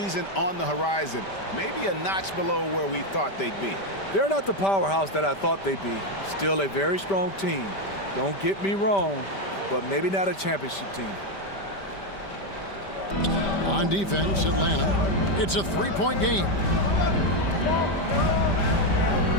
on the horizon, maybe a notch below where we thought they'd be. They're not the powerhouse that I thought they'd be. Still a very strong team. Don't get me wrong, but maybe not a championship team. On defense, Atlanta, it's a 3-point game.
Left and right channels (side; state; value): right; late; 5.1 ms